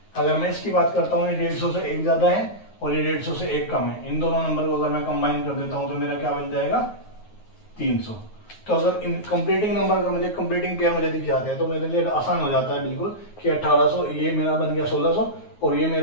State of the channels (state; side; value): late; right; 9.4 ms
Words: अगर मैं इसकी बात करता हूँ, ये 150 से 1 ज्यादा है और ये 150 से 1 कम है। इन दोनों नंबर को अगर मैं कंबाइन कर देता हूँ तो मेरा क्या बन जाएगा, 300। तो अगर इन कंप्लीटिंग नंबर का मुझे कंप्लीटिंग पेयर मुझे दिख जाते हैं तो मेरे लिए आसान हो जाता है बिल्कुल कि 1800, ये मेरा बन गया 1600 और ये